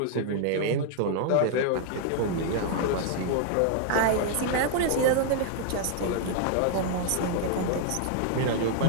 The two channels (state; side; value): different; both; correlation 0.00